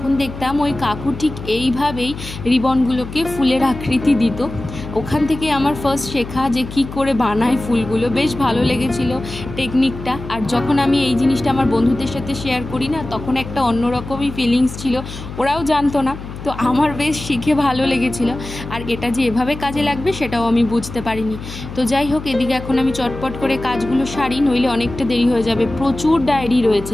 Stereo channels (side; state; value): left; noise; hum, 11 dB below the sound